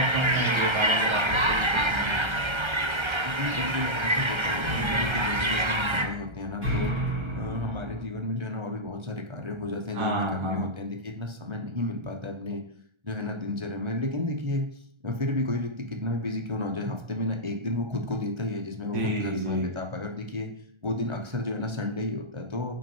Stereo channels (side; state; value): left; late; 1.3 ms